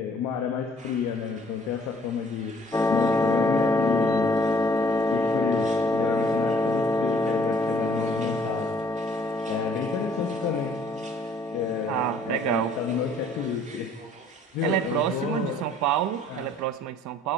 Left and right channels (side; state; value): both; normal; correlation 0.59